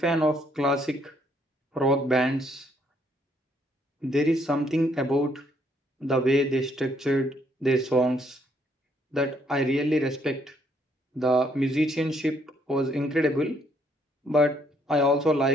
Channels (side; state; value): both; normal; correlation 0.69